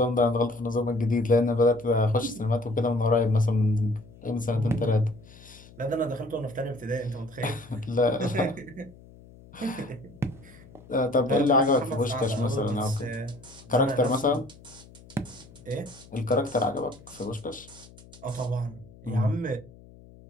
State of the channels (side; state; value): left; noise; hum, 22 dB below the sound